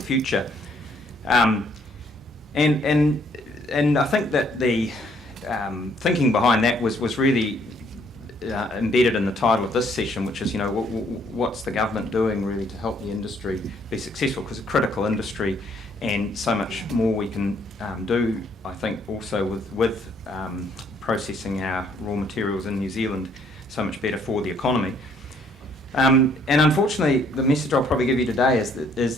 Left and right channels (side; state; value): both; normal; correlation 0.65